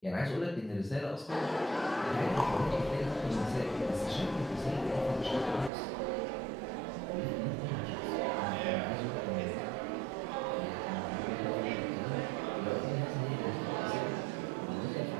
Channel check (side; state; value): left; drops out; at 5.7 s